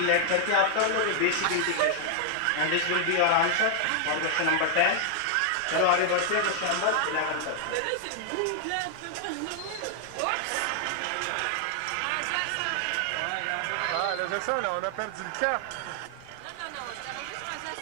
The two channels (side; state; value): both; different; correlation 0.00